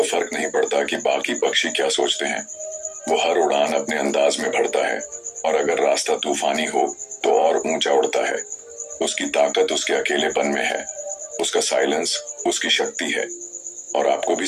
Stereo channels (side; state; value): both; identical; correlation 1.00